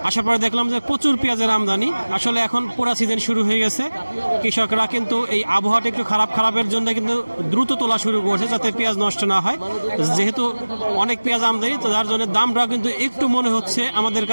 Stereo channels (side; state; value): both; inverted; correlation -1.00